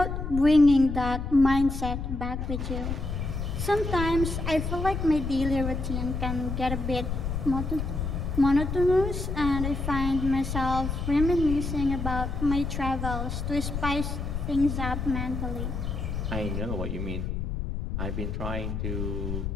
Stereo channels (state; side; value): noise; left; rumble, 3 dB below the sound